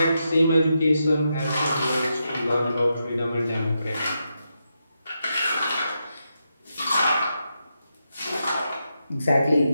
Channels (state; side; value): inverted; both; correlation -0.85